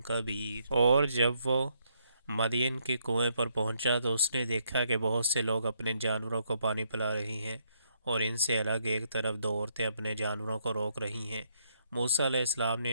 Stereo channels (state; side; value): inverted; both; correlation -0.74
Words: كبير۔ اور جب وہ مدین کے کنویں پر پہنچا تو اس نے دیکھا کہ بہت سے لوگ اپنے جانوروں کو پانی پلا رہی ہیں، اور ان سے الگ ایک طرف دو عورتیں اپنے جانوروں کو روک رہی ہیں۔ موسیٰ علیہ السلام نے